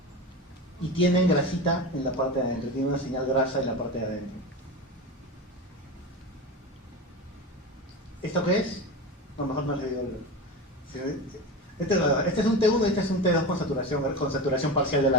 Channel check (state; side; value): normal; both; correlation 0.25